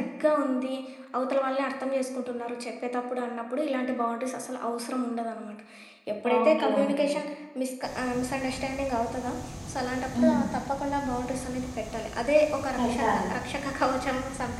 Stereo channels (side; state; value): both; identical; correlation 1.00